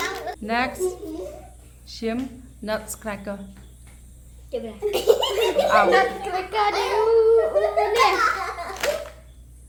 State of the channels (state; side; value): identical; both; correlation 1.00